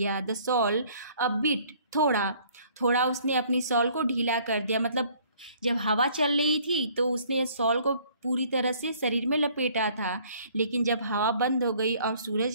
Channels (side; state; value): both; inverted; correlation -0.58